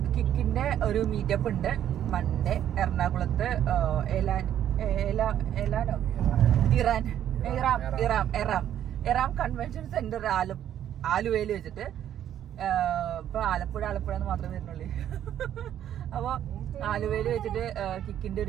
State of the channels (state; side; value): quieter; left; 10.7 dB